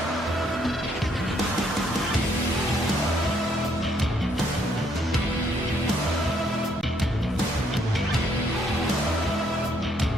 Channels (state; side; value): normal; both; correlation 0.70